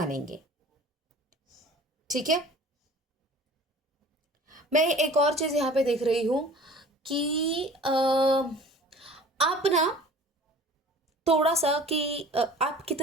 ठीक है। मैं एक और चीज़ यहाँ पे देख रही हूँ कि आप ना थोड़ा सा कि आप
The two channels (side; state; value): both; normal; correlation 0.45